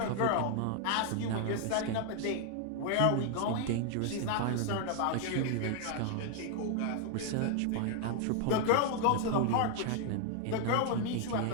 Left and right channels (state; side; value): different; both; correlation 0.00